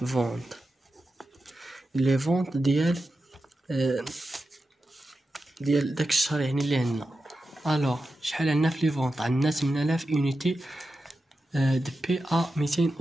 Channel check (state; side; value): normal; both; correlation 0.91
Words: لي فونت ديال داك الشهر يعني اللي عندنا. الوغ شحال عندنا في لي فونت؟ عندنا 8000 يونيتي دي بي ا